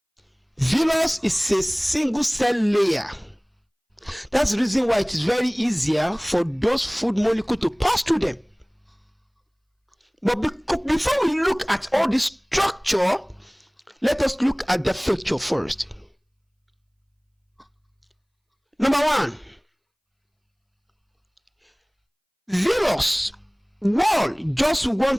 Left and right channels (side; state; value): both; identical; correlation 1.00